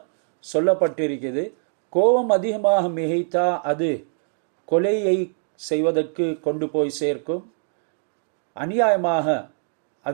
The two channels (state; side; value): silent; left; digital silence